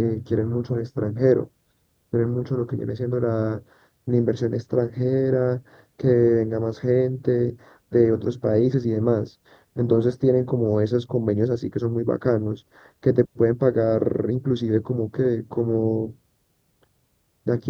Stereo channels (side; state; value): both; identical; correlation 1.00